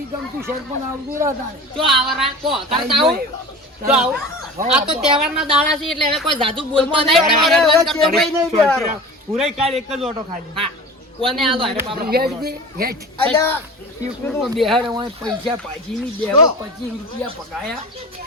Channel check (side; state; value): both; normal; correlation 0.36